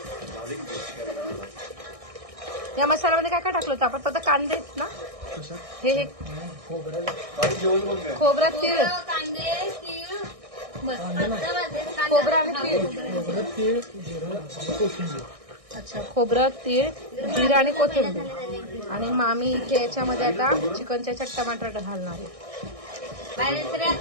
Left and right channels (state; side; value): late; left; 1.6 ms